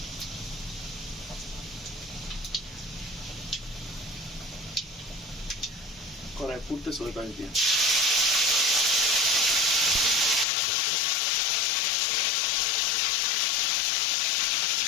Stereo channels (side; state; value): right; drops out; at 10.5 s